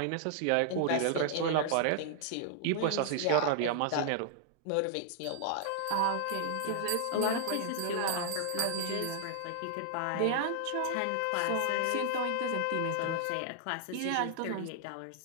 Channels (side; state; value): both; different; correlation 0.00